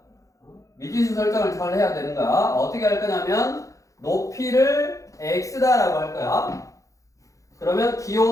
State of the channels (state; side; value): late; right; 0.16 ms